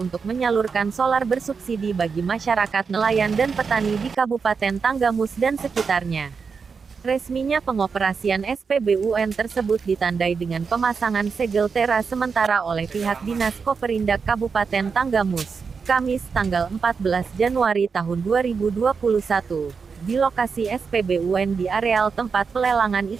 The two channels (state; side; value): quieter; left; 5.5 dB